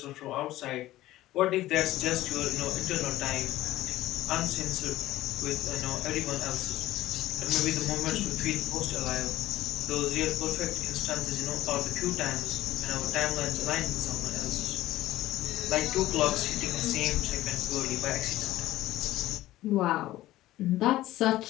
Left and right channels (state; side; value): quieter; right; 15.7 dB